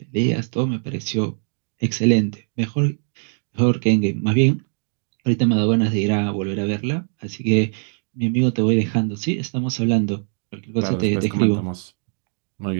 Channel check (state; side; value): silent; left; 59 dB below the other